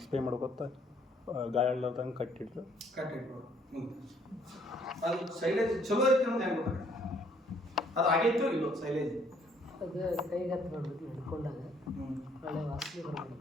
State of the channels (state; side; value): normal; both; correlation 0.64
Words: ಸ್ಪ್ರೇ ಮಾಡ್ಕೊತ ಗಾಯ ಆಡ್ಲಾರ್ದಂಗೆ ಕಟ್ಟಿಟ್ಟು ಅದು ಸೈಲೇಜ್ ಚಲೋ ಐತೆ ಅನ್ನೋದು ಹೆಂಗೆ ಗೊತ್ತಾಗ ಅದು ಆಗೈತೋ ಇಲ್ಲೋ ಸೈಲೇಜ್ ಅದು ಕೈಗೆ ಹತ್ತು ನೋಡ್ಬೇಕು ಹಿಡ್ಕೊಂಡಾಗ ಒಳ್ಳೆ ವಾಸನೆ